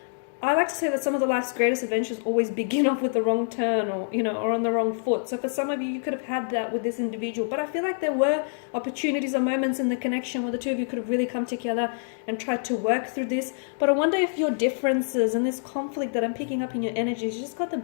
I like to say that some of the life's greatest adventures always begin off with the wrong turn, or or on the wrong foot. So for some of you, you could have had that with this individual, but I feel like there were opportunities or moments in the connection where the two of you could have really come together and tried to work through this. But I wonder if your differences and this conflict that I'm picking up in your energies just got the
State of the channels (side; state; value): right; silent; digital silence